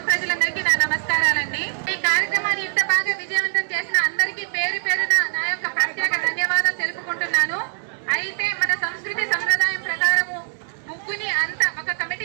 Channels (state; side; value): silent; left; 64 dB below the other